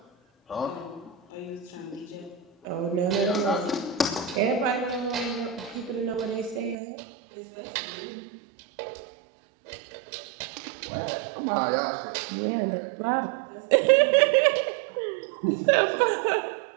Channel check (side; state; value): left; drops out; at 6.8 s